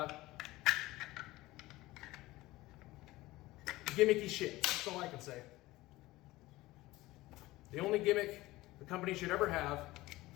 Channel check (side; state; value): right; quieter; 18.6 dB